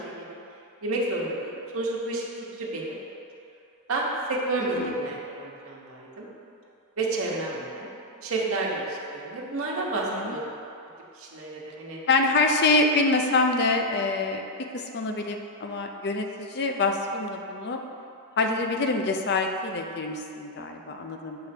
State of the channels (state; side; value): normal; both; correlation 0.00